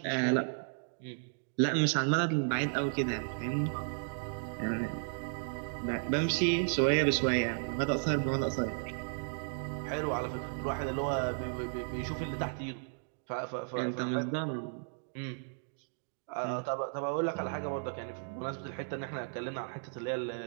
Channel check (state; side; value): silent; left; digital silence